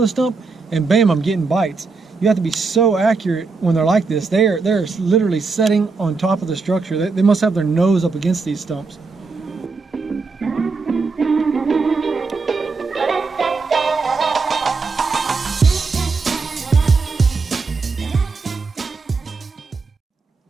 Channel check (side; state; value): left; quieter; 4.3 dB